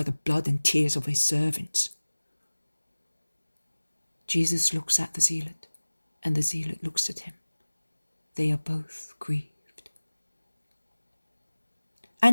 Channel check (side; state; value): both; inverted; correlation -1.00